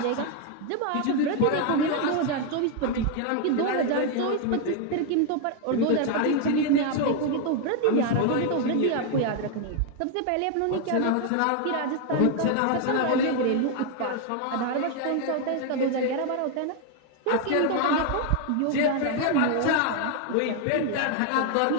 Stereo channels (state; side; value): different; both; correlation 0.01